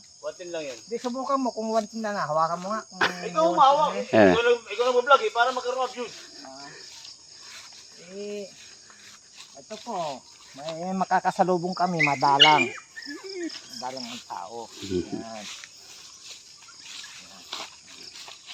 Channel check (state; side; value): identical; both; correlation 1.00